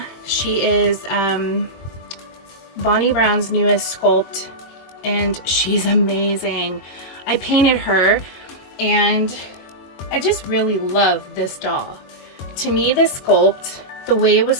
She is Bonnie Brown's newest sculpt, and she's amazing. I painted her, and I just really love this doll. To me, this sculpt, the way it was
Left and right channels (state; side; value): late; right; 22 ms